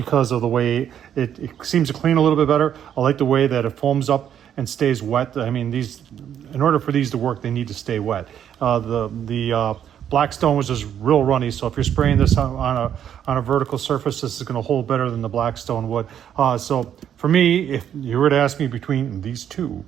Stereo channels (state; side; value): quieter; left; 9.5 dB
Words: of the way it seems to clean a little bit better. I like the way that it foams up and stays wet. I mean, in order for these to work, they need to stay wet. The Blackstone was just real runny, so if you're spraying this on a vertical surface, this is going to hold better than the Blackstone would. So for me, if you were to ask me between these two,